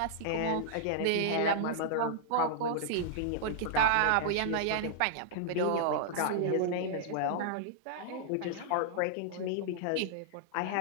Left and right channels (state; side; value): different; both; correlation -0.01